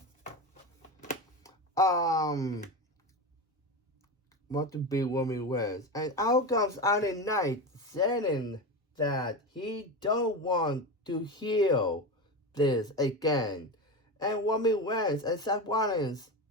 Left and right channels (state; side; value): normal; both; correlation 0.21